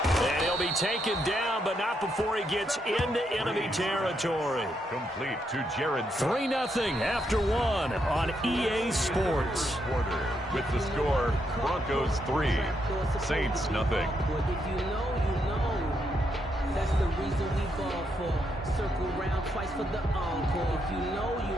And he'll be taken down, but not before he gets into enemy territory. Complete to Jared. 3-0 after 1 on EA Sports. Quarter with the score, Broncos 3, Saints nothing. That's the reason we ball for. Circle round twice for the encore. If you know, you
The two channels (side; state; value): both; normal; correlation 0.79